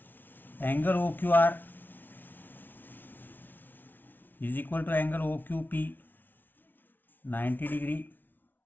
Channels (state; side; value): late; right; 0.090 ms